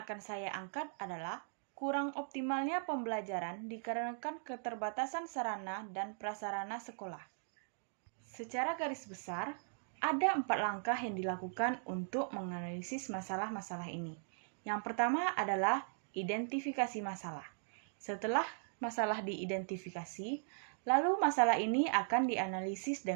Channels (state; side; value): silent; left; digital silence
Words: saya angkat adalah kurang optimalnya pembelajaran dikarenakan keterbatasan sarana dan prasarana sekolah. Secara garis besar, ada 4 langkah yang dilakukan untuk menganalisis masalah-masalah ini. Yang pertama adalah identifikasi masalah. Setelah masalah diidentifikasi, lalu masalah ini akan dianalisis